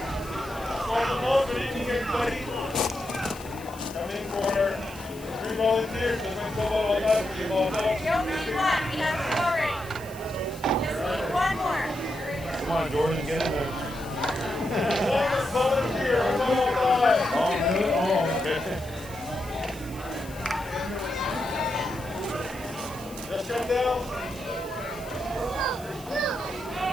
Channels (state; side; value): noise; left; hiss, 20 dB below the sound